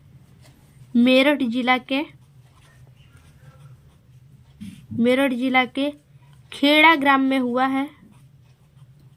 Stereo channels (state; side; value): identical; both; correlation 1.00